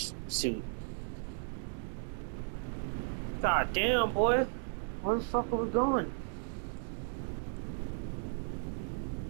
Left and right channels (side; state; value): left; silent; digital silence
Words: suit. God damn, boy. Where the fuck are we going?